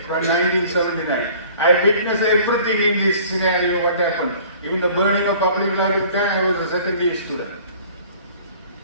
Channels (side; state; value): both; inverted; correlation -0.50